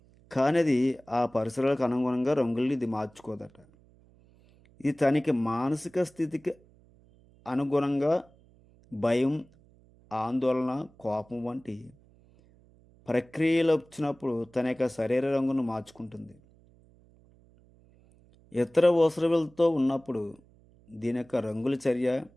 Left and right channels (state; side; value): noise; right; hum, 29 dB below the sound